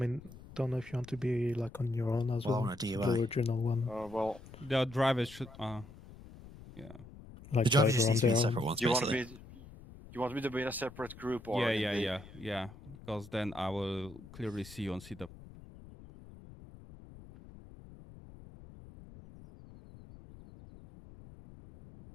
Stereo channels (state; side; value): noise; left; rumble, 18 dB below the sound